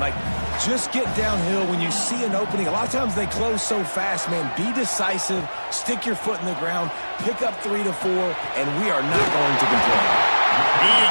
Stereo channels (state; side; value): inverted; both; correlation -1.00